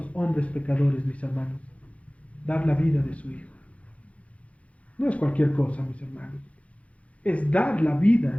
hombres pecadores, mis hermanos. Dar la vida de su Hijo. No es cualquier cosa, mis hermanos. Es dar la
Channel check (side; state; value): right; late; 0.064 ms